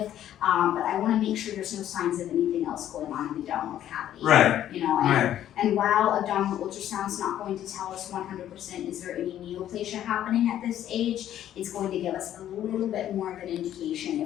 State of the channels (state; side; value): quieter; right; 11.5 dB